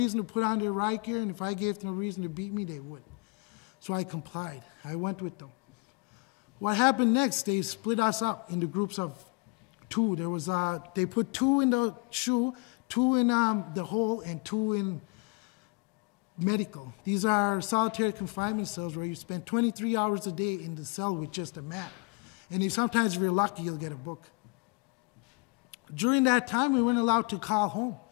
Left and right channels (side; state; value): right; quieter; 31.9 dB